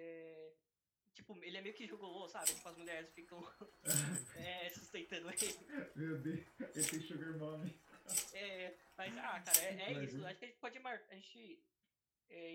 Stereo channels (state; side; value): identical; both; correlation 1.00